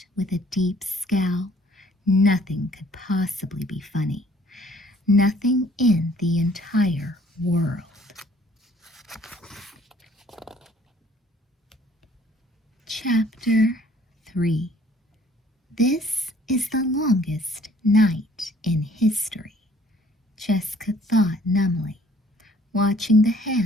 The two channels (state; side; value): normal; both; correlation 0.58